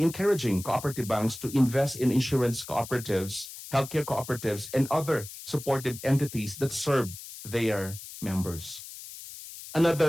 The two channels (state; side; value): noise; left; hiss, 13 dB below the sound